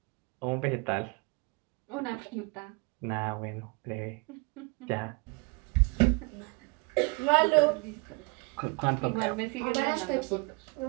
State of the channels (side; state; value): left; quieter; 29.2 dB